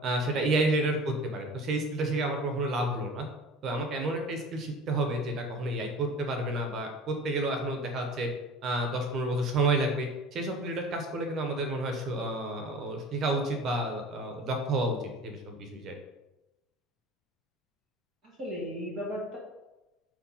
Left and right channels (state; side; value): normal; both; correlation 0.40